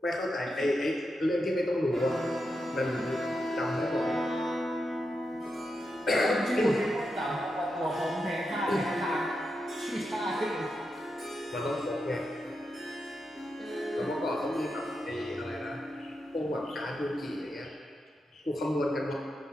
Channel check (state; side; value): normal; both; correlation 0.87